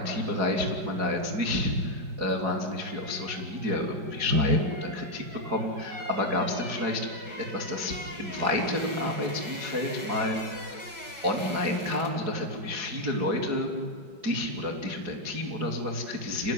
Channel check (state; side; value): late; left; 5.2 ms